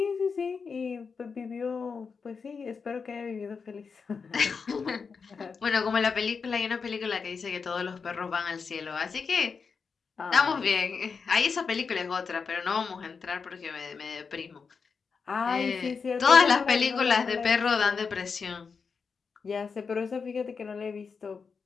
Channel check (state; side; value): quieter; right; 5.4 dB